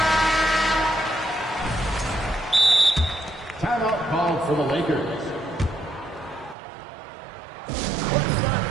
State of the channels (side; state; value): left; drops out; at 6.6 s